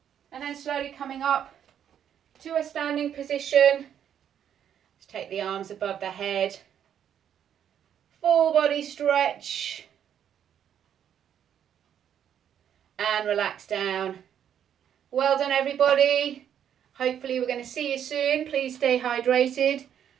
And then slowly coming up to a standing position. Let's take the arms above the head. Full body stretch. And relax down. Well done, everybody. Hopefully we're going to see you soon. Please stay hydrated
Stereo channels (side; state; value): left; quieter; 9.3 dB